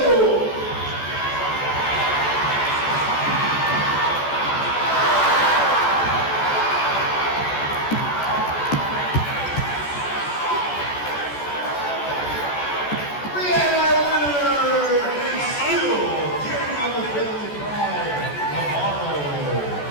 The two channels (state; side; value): late; right; 14 ms